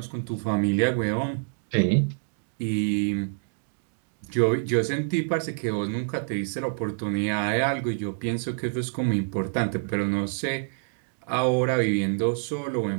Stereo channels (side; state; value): left; silent; digital silence